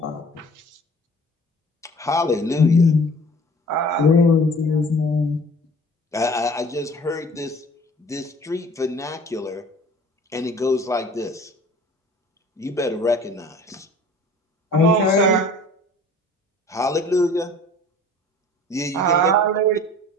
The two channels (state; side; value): normal; both; correlation 0.48